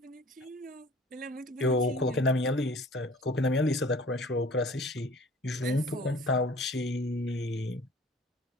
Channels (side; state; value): both; normal; correlation 0.48